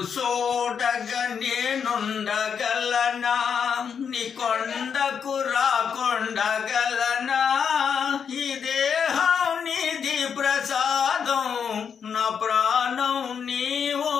చూడగా నేనుండగలనా, నీ కొండకు రాకుండగలనా? ఈ దేహం నీది ప్రసాదం, నా ప్రాణం నీ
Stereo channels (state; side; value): quieter; right; 7.0 dB